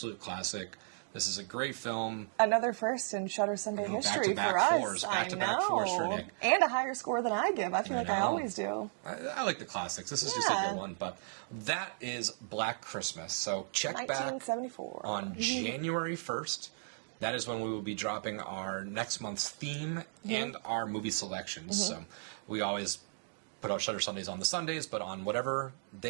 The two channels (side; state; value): left; silent; digital silence